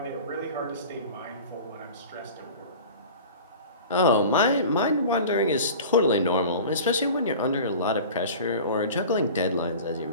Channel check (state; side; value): inverted; both; correlation -0.38